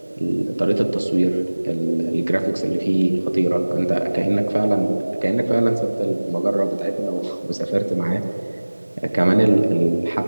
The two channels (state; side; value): inverted; both; correlation -1.00